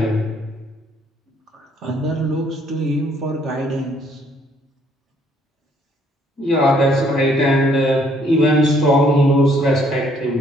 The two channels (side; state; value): both; normal; correlation 0.65